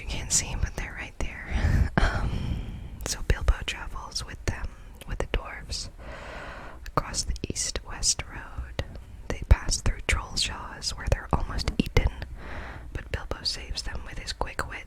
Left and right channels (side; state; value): both; identical; correlation 1.00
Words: can't see, but they're right there. So Bilbo travels with them, with the dwarves, across the east-west road. They pass through Trollshaws, where they're almost eaten, but Bilbo saves them with his quick